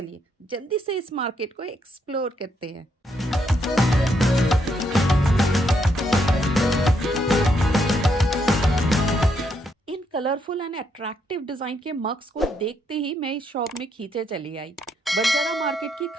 जल्दी से इस मार्केट को एक्सप्लोर करते हैं। इन कलरफुल एंड अट्रैक्टिव डिजाइन के मग्स को देखते ही मैं इस शॉप में खींचे चली आई। बंजारा मार्केट की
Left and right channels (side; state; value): both; normal; correlation 0.76